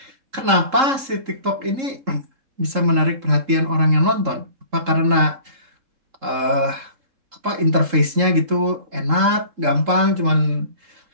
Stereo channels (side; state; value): left; late; 3.7 ms